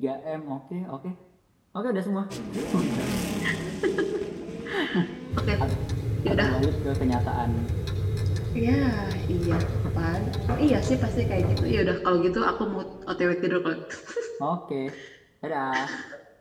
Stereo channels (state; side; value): identical; both; correlation 1.00